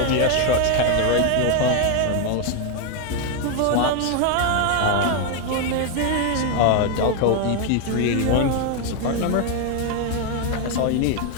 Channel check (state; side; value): different; both; correlation 0.01